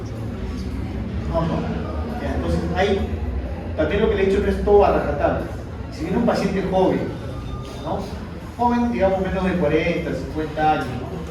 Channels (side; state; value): both; identical; correlation 1.00